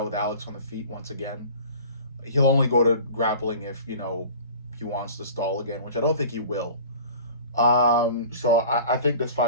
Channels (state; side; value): inverted; both; correlation -0.42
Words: with Alex on the feet once again. He'll only go to grappling if he wants to stall again, which I don't think he will. So I think this